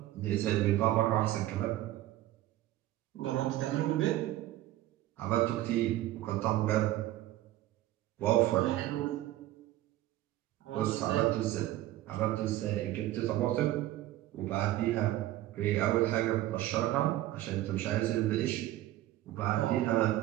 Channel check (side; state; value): left; quieter; 15.1 dB